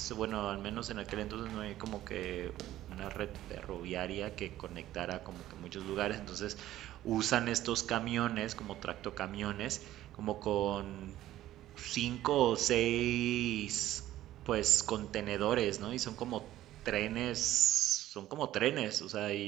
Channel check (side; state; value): left; quieter; 14.0 dB